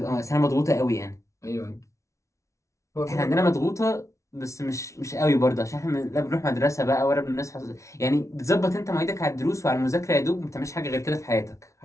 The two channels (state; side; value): late; right; 0.14 ms